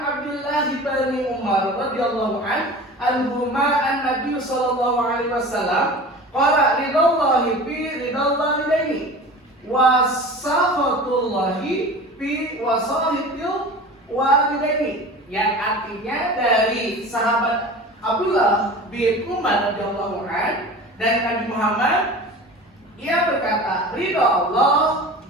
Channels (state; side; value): normal; both; correlation 0.37